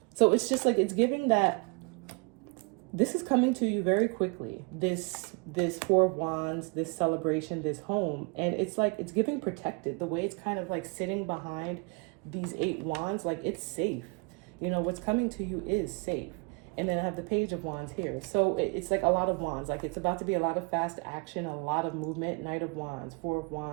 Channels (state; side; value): quieter; left; 31.4 dB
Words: So it's just like, it's giving that this is coming to you very quickly. This Four of Wands, this celebration, this home. And it's like, it's giving protected. The way it's kind of like sitting behind these Eight Wands, like it's safe. You know, what's coming to you is safe. And then I have the Page of Wands here. So it's like a lot of wands. Like it's about to be a lot of fast action, a lot of movement. Knight of Wands, Four of